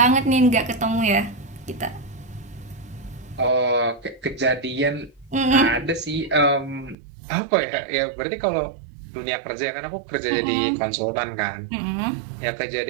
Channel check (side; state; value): left; drops out; at 7.0 s